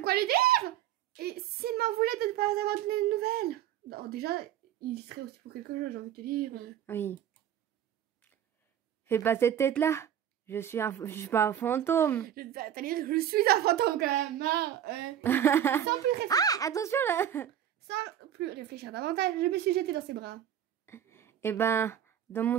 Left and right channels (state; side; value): quieter; left; 10.4 dB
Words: lui dire. Et s'il m'en voulait de ne pas avoir donné de nouvelles. Alors déjà, il y serait aussi pour quelque chose, j'ai envie de te dire. Oui. Fais pas cette tête-là. Je suis pas un fantôme. C'est-à-dire que je suis un fantôme quand même. Hein. Sans plus réfléchir. Ah, attention là. Sans plus réfléchir davantage, je me suis jetée dans ses bras. Eh ben, dans mon